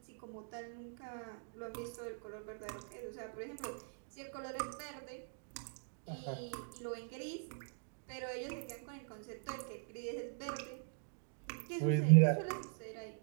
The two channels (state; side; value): silent; left; digital silence